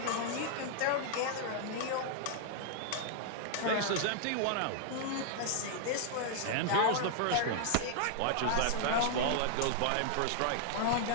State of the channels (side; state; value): both; different; correlation -0.01